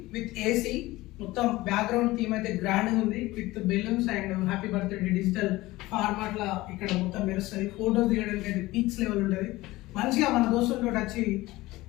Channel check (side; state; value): right; quieter; 18.9 dB